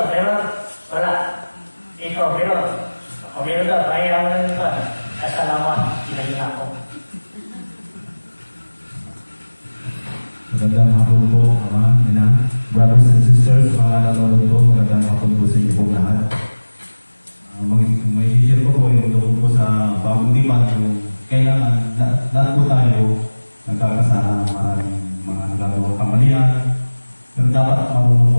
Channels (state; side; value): inverted; both; correlation -1.00